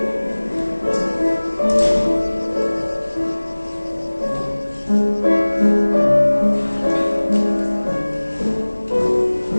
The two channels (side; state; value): both; inverted; correlation -1.00